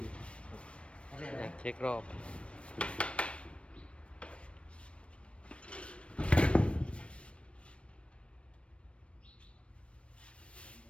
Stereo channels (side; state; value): right; late; 0.060 ms